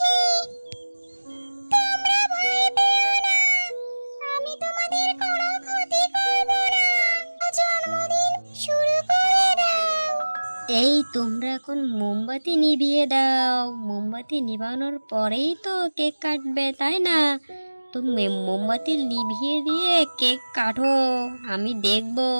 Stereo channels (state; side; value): inverted; both; correlation -1.00